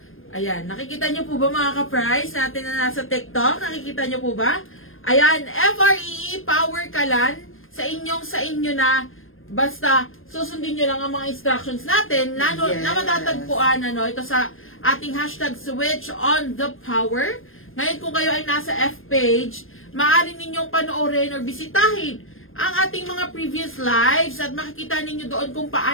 ayan, nakikita nyo po ba mga ka-price natin na nasa TikTok? Nakikita nyo po ba? Ayan, FREE Power Kalan, sa inyo na, basta susundin nyo lang ang mga instructions natin na matatagpuan ito sa ating hashtag switch on the power. Ngayon kung kayo ay nasa F page, maaari ninyong panoorin or bisitahin ang ating mga previous lives at makikita ninyo doon kung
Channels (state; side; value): late; right; 0.60 ms